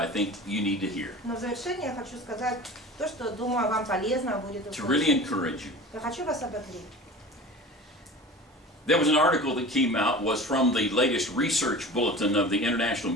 think you need to hear но в завершение я хочу сказать то, что, думаю, вам полезно будет to really услышать. encourage you. Я хочу вас ободрить. There was an article that came out, was from the latest research bulletin of the International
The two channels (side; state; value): both; normal; correlation 0.36